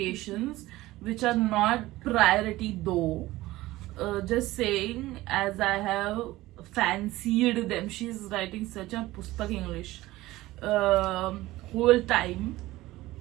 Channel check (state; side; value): quieter; left; 17.7 dB